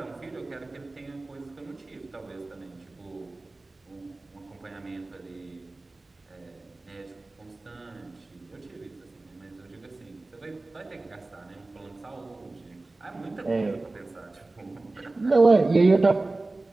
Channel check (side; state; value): left; quieter; 3.1 dB